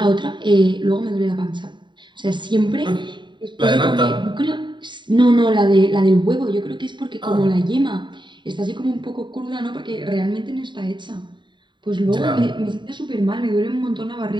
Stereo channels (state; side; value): late; left; 0.23 ms